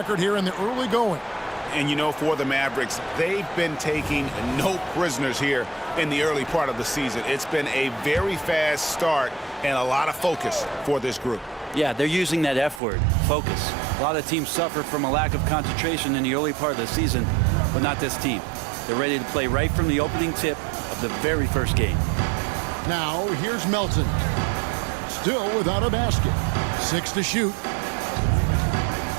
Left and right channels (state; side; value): drops out; left; at 12.8 s